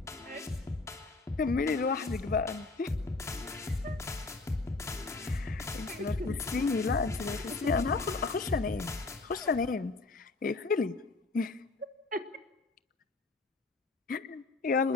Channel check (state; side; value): quieter; right; 3.6 dB